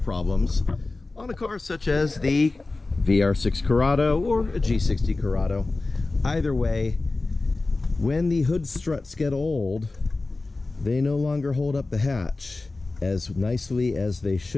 on a car such as the VR6 Corrado or a G60 Corrado. Either way, when the hood struts get old, they no longer hold up the hatch as nicely as they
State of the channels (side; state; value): right; quieter; 3.4 dB